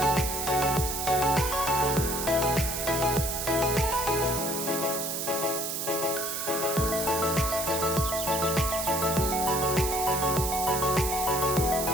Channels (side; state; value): right; noise; hiss, 3 dB below the sound